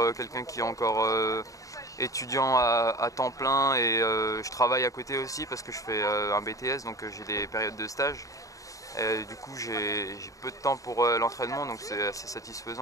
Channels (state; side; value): late; right; 0.16 ms